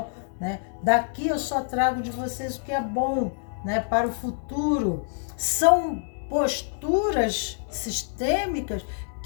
né? Daqui eu só trago de vocês o que é bom, né, para o futuro. São posturas sistêmicas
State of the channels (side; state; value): right; silent; digital silence